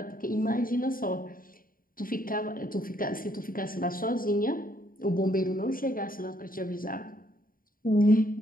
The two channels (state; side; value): late; right; 0.41 ms